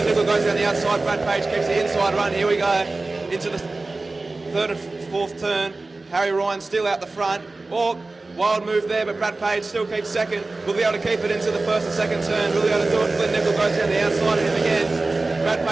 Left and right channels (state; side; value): quieter; left; 3.3 dB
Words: Nickel goes down the outside, Brad Page keeps the inside run. Here we go, into the 3rd and 4th turn. Harry Ryan still out the front. Oh, Wild move there, but Brad Page still keeps second. Will be able to keep it into the first and second turn. Will be able to do it. Flynn Nickel goes down the outside of him again. Brad